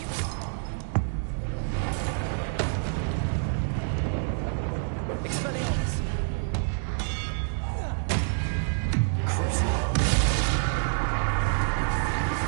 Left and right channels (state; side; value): silent; left; digital silence